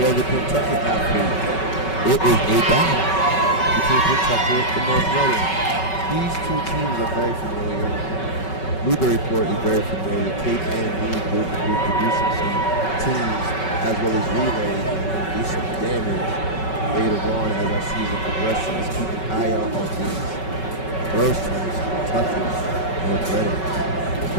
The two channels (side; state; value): right; late; 5.3 ms